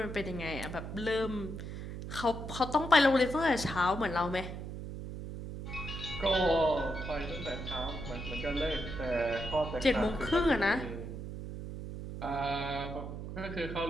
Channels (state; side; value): noise; right; hum, 8 dB below the sound